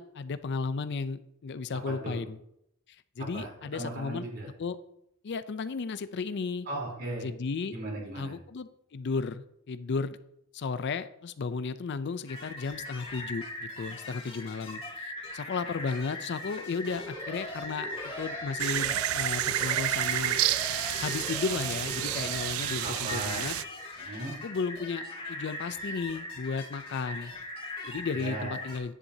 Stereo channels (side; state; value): both; normal; correlation 0.18